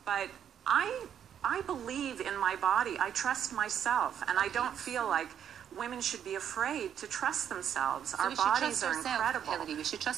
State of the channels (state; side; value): quieter; left; 9.1 dB